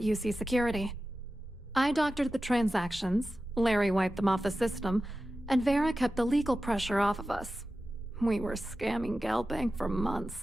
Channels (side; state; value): both; normal; correlation 0.93